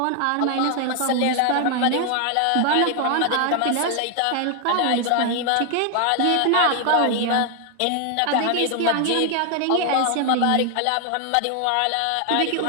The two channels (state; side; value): different; both; correlation 0.00